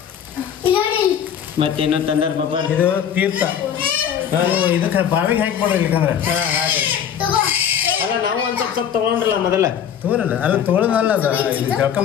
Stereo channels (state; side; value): quieter; right; 8.8 dB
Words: ಮತ್ತೇನು ತಂದಾರ ಪಾಪ? ಇದು ತೀರ್ಥ. ಇದಕ್ಕೆ ಬಾವಿಗೆ ಹಾಕಿ ಕೊಡ್ರಿ ಇಲ್ಕಂದ್ರೆ. ಅಲ್ಲ ನಾವು ಒಂದ್ ಸ್ವಲ್ಪ ತಗೊಂಡ್ರಲ್ಲ ಮೊದಲ. ತಗೋರಲ್ಲ ಅಲ್ಲ ತಗೊಳ್ಳೋದಲ್ಲ ಅದು ಜಳಕ